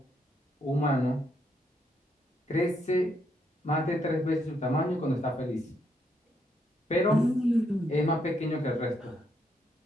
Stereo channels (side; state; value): both; normal; correlation 0.76